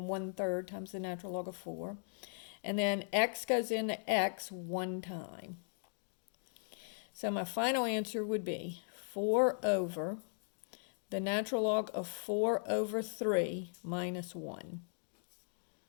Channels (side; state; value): right; silent; digital silence